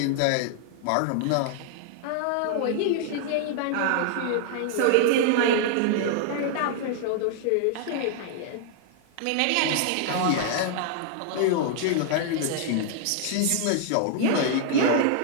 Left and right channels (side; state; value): both; different; correlation -0.01